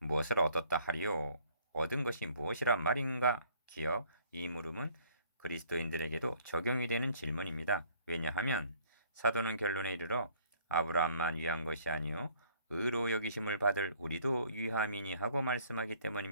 얻었다 하리요? 얻은 것이 무엇이란 말인가? 기억 이 물음은 그리스도인들에게도 적용이 되는 질문입니다. 왜냐하면 사도는 결론에 이르러 아브라함만 위한 것이 아니요 의로 여기심을 받을 우리도 위함이니 하고 말씀하기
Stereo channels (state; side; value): inverted; both; correlation -0.59